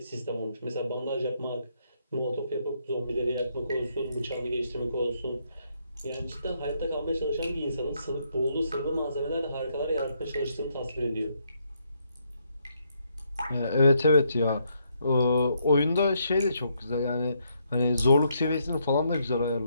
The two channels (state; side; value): inverted; both; correlation -0.75